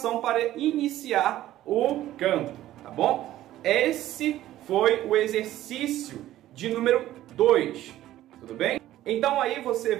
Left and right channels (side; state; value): left; quieter; 14.0 dB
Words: para iniciar o canto, tá bom? Esse foi o exercício de número 2, tudo bem? Então aí você